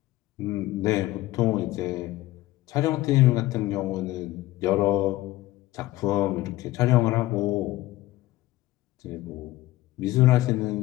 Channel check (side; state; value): right; quieter; 17.0 dB